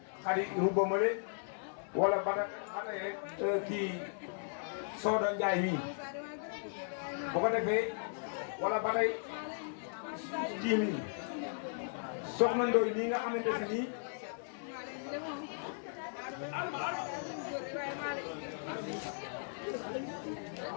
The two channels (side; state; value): right; silent; digital silence